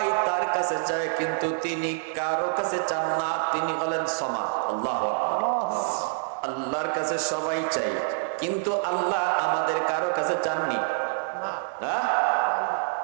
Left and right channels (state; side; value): silent; left; digital silence